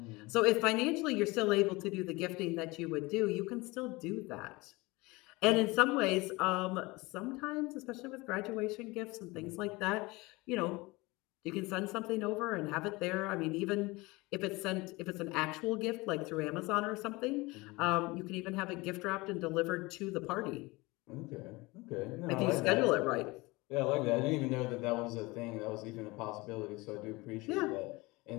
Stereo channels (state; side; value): quieter; right; 23.1 dB